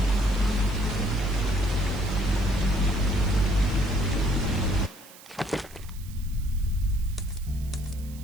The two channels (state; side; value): noise; right; hiss, 21 dB below the sound